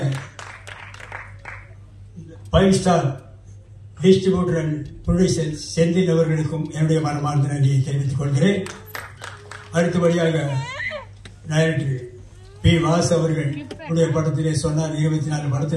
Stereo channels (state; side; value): identical; both; correlation 1.00